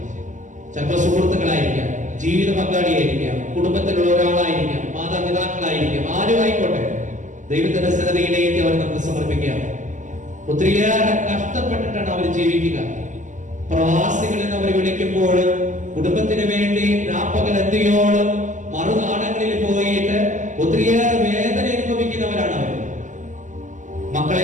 ചിലപ്പോൾ സുഹൃത്തുക്കളായിരിക്കാം, ജീവിത പങ്കാളിയായിരിക്കാം, കുടുംബത്തിലുള്ള ഒരാളായിരിക്കാം, മാതാപിതാക്കളായിരിക്കാം, ആരും ആയിക്കോട്ടെ, ദൈവത്തിന്റെ സന്നദ്ധയിലേക്ക് അവർ നമുക്ക് സമർപ്പിക്കാം. ഒത്തിരിയേറെ കഷ്ടപ്പെട്ടിട്ടാണ് അവർ ജീവിക്കുക. പ്രവാസികൾ എന്ന് അവർ വിളിക്കുമ്പോൾ കുടുംബത്തിന് വേണ്ടി രാപ്പകൽ എന്തിയോളം മറുനാടങ്ങളിൽ പോയിട്ട് ഒത്തിരിയേറെ വേദന അനുഭവിക്കുന്നവരാണ് അവർ.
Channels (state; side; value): late; left; 0.36 ms